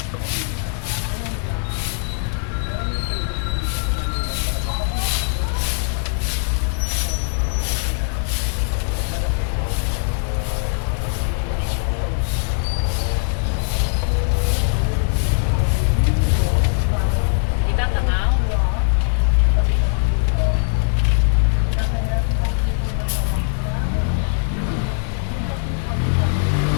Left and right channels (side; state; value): right; silent; digital silence